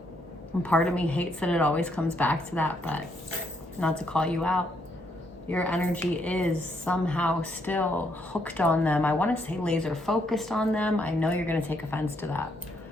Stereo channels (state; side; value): normal; both; correlation 0.74